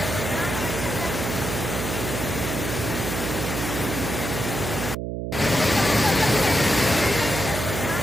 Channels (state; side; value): noise; right; hum, 4 dB below the sound